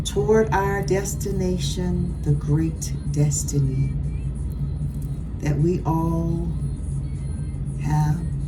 toward our destination, the great destiny that we all have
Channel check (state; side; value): identical; both; correlation 1.00